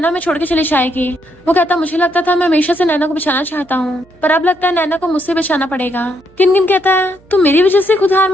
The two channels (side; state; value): right; noise; hum, 29 dB below the sound